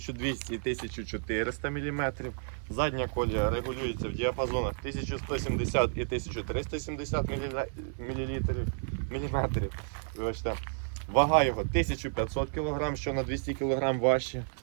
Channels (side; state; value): left; silent; digital silence